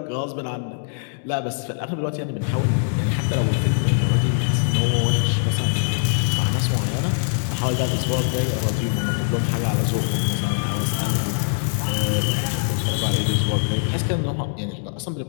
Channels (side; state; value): right; silent; digital silence